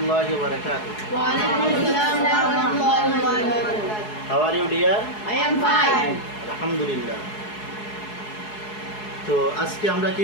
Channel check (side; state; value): right; late; 4.7 ms